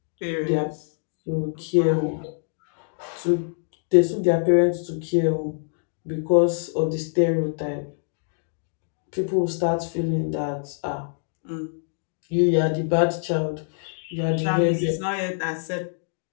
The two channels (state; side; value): silent; right; digital silence